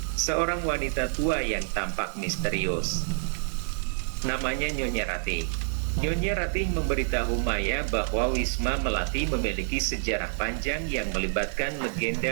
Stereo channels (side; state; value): left; silent; digital silence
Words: seorang wanita tua yang tampak misterius. Namanya Nyonya Ratih. Nyonya Ratih memberitahu Maya bahwa Wisma Melati memiliki sejarah panjang yang melibatkan